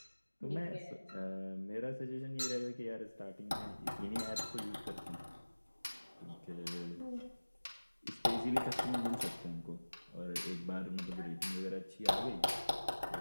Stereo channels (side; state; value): both; inverted; correlation -1.00